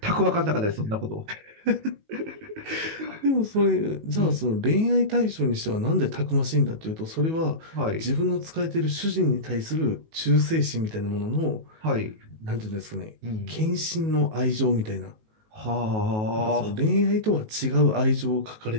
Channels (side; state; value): left; late; 19 ms